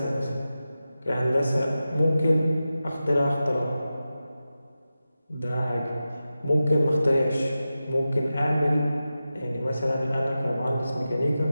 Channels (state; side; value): inverted; both; correlation -0.93